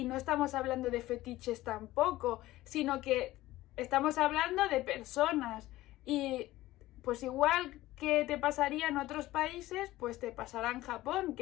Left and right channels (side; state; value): right; quieter; 16.7 dB